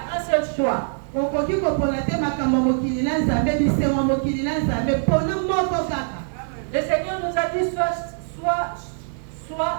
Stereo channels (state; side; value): silent; left; 56 dB below the other